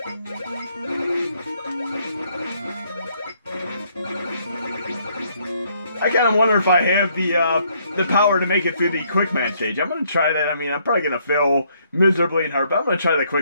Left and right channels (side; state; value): both; inverted; correlation -0.69